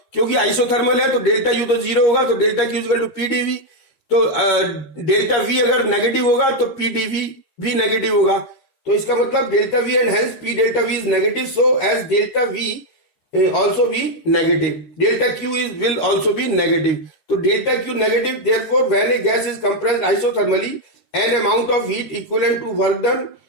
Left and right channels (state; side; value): late; right; 13 ms